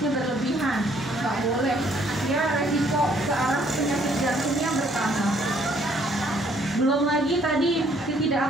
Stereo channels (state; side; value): normal; both; correlation 0.64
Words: berlebihan, nggak boleh ya, resiko ke arah penyakit jantungnya bertambah. Belum lagi tadi